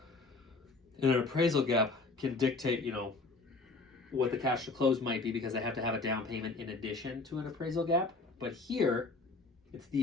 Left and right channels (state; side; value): quieter; right; 3.7 dB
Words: And an appraisal gap can dictate, what the cash to close might be, because they have to have a down payment in addition to an appraisal gap. But here, it's